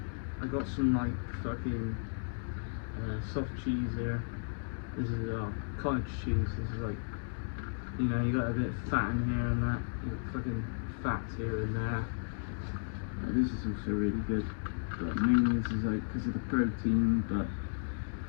got some like fucking soft cheese here. This is cottage cheese. This is like, you know, you got a bit of fat in here and that. You got fucking fats here and there. This is also really good, but mainly this is like because of the protein. But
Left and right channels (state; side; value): silent; right; digital silence